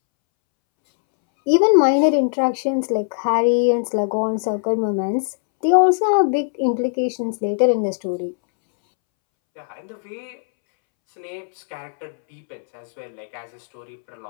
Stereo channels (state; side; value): silent; right; 65 dB below the other